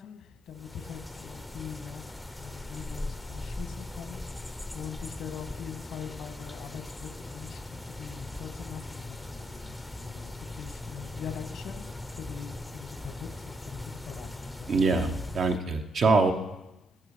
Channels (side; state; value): both; normal; correlation 0.77